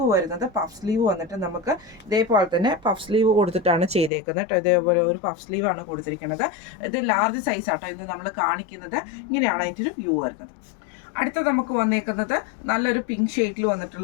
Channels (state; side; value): drops out; right; at 4.1 s